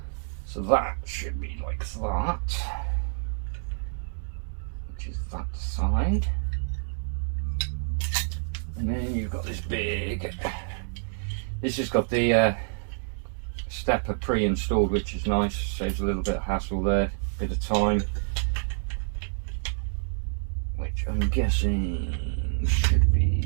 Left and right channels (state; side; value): silent; left; digital silence